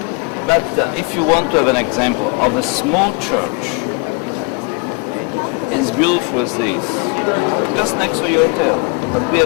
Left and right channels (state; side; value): quieter; right; 30.5 dB